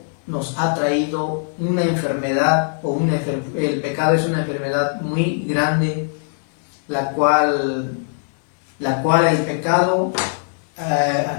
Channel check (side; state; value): right; silent; digital silence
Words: nos ha traído una enfermedad, el pecado es una enfermedad muy grande, la cual el pecado